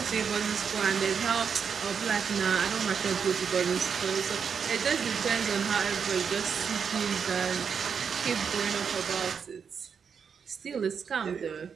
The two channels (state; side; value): quieter; left; 6.6 dB